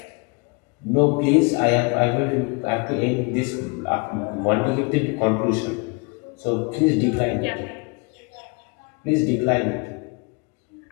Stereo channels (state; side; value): quieter; right; 31.5 dB